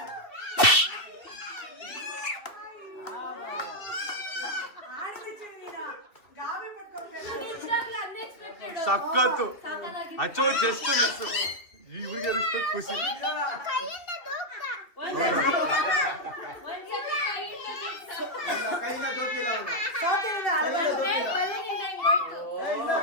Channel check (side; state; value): right; late; 2.7 ms